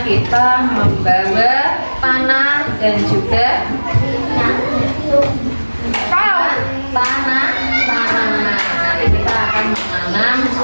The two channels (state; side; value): inverted; both; correlation -1.00